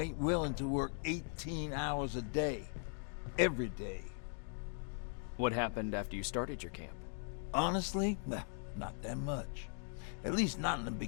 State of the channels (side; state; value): right; silent; 51 dB below the other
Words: willing to work 18 hours a day. Every day. What happened after you started your camp? Honestly, not that much. At least not in the